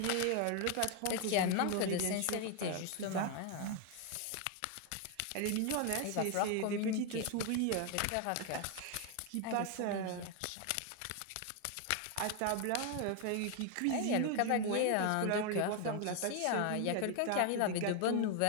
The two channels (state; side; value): different; both; correlation 0.01